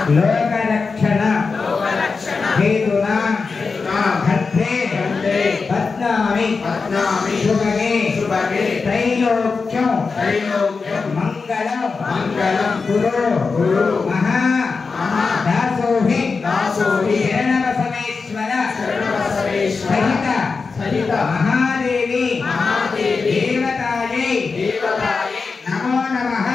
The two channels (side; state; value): right; quieter; 4.6 dB